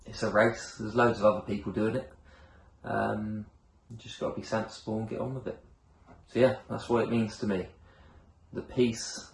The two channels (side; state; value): both; identical; correlation 1.00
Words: it's a race. There's loads of other people doing it. You just got to be sensible and get on with it. So yeah, that's what it means to me. The peace,